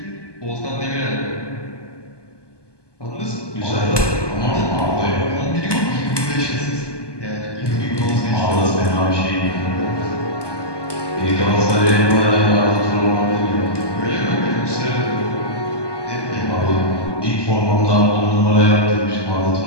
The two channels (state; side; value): late; right; 1.2 ms